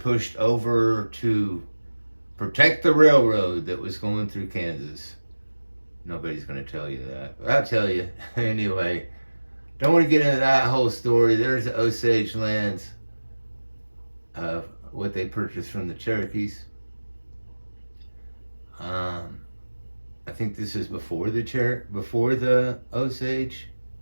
over to protect the railroad that was going through Kansas. Nobody's going to tell you that. But I'll tell you anyway. Don't want to get into that whole story. There's the Osage lands, what they purchased from the Cherokees. I think this is before the Osage.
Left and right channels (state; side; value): inverted; both; correlation -1.00